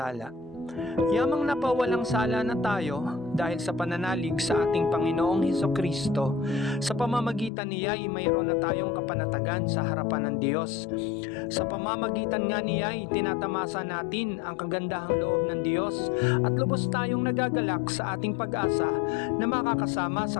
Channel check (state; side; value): drops out; right; at 7.5 s